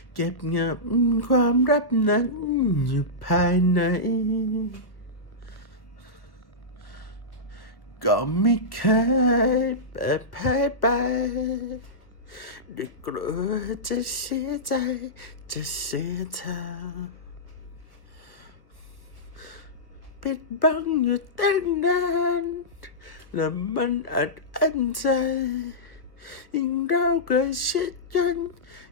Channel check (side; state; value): right; late; 1.1 ms